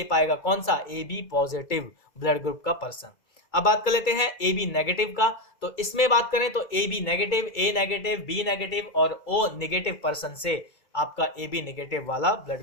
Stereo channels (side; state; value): right; late; 2.3 ms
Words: पाएगा कौन सा, A B positive blood group का पर्सन। अब बात कर लेते हैं ए बी नेगेटिव का, तो इसमें बात करें तो A B negative, A negative, B negative और ओ नेगेटिव पर्सन से आपका ए बी नेगेटिव वाला